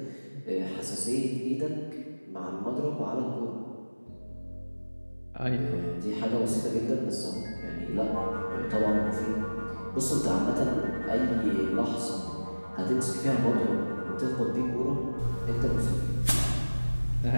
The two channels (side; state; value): both; inverted; correlation -1.00